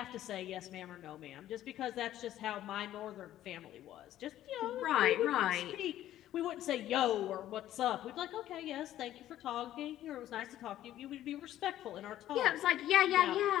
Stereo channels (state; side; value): quieter; right; 12.9 dB